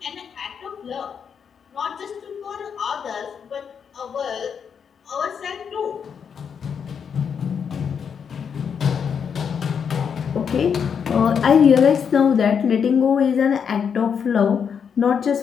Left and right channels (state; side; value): quieter; right; 7.0 dB